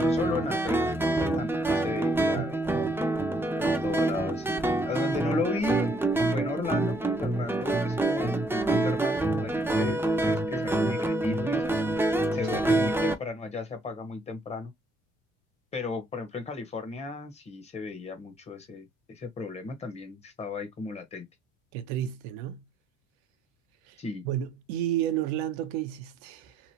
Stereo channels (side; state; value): both; normal; correlation 0.70